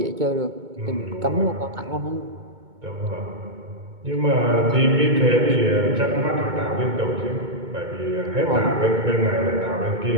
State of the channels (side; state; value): left; late; 2.2 ms